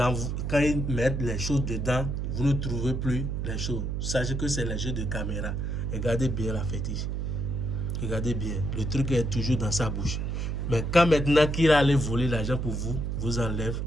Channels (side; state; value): right; noise; hum, 2 dB below the sound